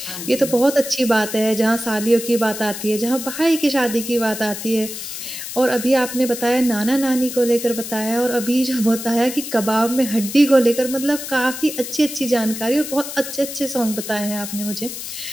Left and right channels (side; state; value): left; noise; hiss, 8 dB below the sound